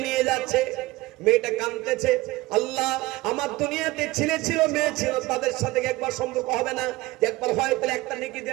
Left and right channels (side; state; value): left; quieter; 20.0 dB